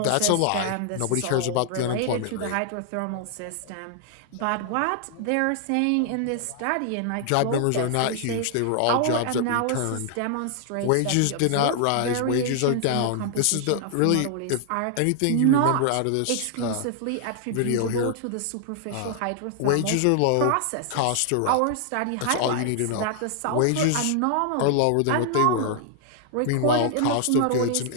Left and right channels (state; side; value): different; both; correlation 0.00